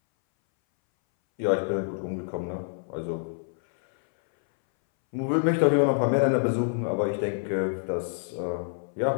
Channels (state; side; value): silent; right; 60 dB below the other